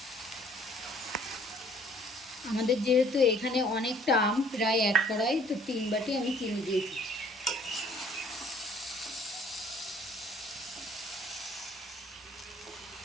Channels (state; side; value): normal; both; correlation 0.59